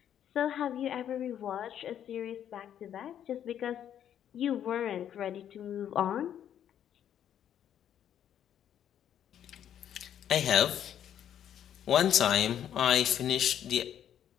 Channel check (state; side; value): quieter; right; 10.0 dB